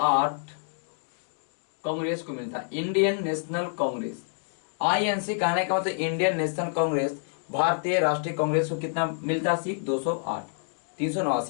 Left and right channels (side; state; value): right; silent; digital silence